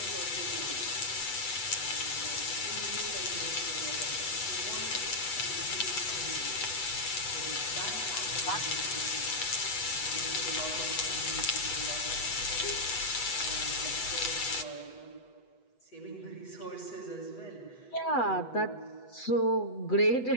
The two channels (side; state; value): right; late; 8.1 ms